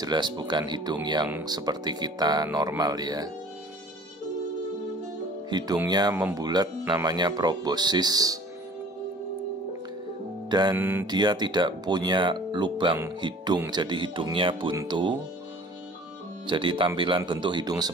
bukan hidung yang seperti kita normal ya. Hidungnya membulat, namanya proboscis. Dan dia tidak punya lubang hidung, jadi hidungnya buntu. Jadi tampilan bentuk hidung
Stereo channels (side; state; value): both; normal; correlation 0.48